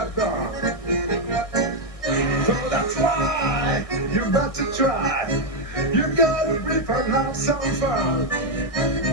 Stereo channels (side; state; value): right; late; 1.6 ms